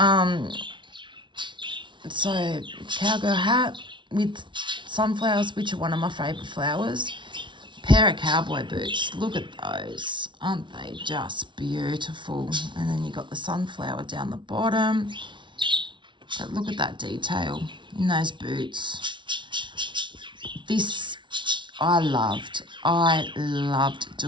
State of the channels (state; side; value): late; left; 0.24 ms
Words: So cowgirl hat with sunflowers, which are one of my favourite flowers. Pair of cowboy boots. Look at those. Aren't they just beautiful? And then you got the sunflower down the bottom. But look at that detail in those boots. This I loved. I loved